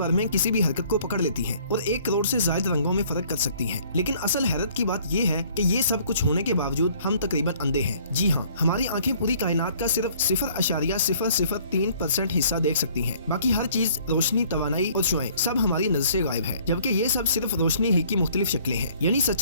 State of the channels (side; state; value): both; inverted; correlation -0.58